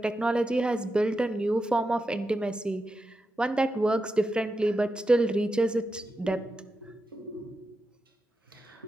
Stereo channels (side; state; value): both; normal; correlation 0.89